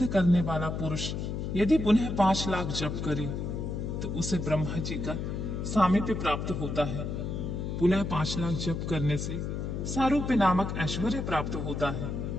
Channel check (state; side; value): noise; left; hum, 3 dB below the sound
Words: करने वाला पुरुष यदि पुनः 5 लाख जप करे तो उसे ब्रह्मा जी का सामीप्य प्राप्त होता है। पुनः 5 लाख जप करने से सारूप्य नामक ऐश्वर्य प्राप्त होता है।